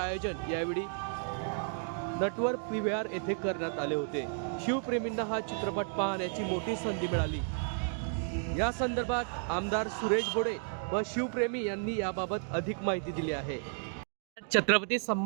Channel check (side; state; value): left; silent; 56 dB below the other